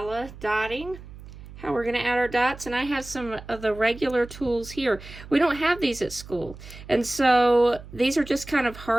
dotting, how we're going to add our dots. And I have some of the regular tools here. We don't have these at school. And so these are just kind of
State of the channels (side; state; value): right; noise; hum, 16 dB below the sound